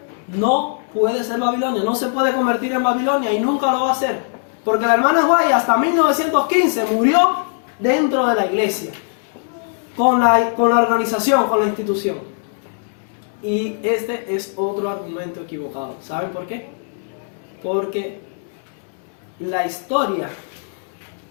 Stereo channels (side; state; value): right; silent; 66 dB below the other